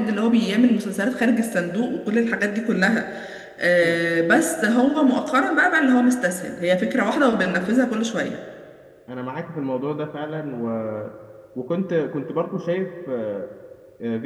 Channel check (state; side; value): identical; both; correlation 1.00